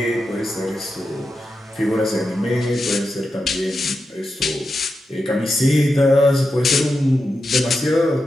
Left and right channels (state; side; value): normal; both; correlation 0.89